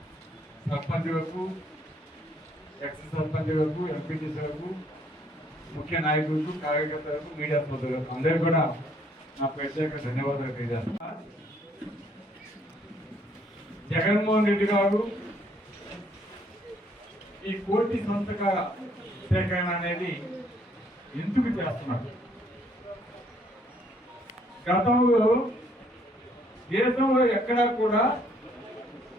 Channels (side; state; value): both; normal; correlation 0.66